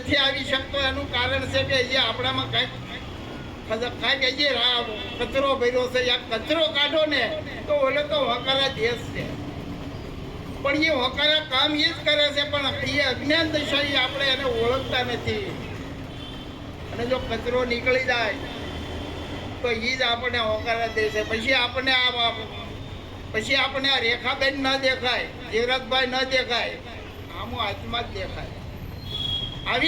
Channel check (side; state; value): both; identical; correlation 1.00